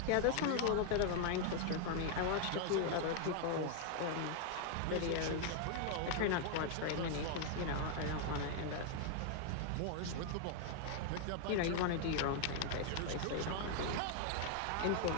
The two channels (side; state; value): both; different; correlation 0.00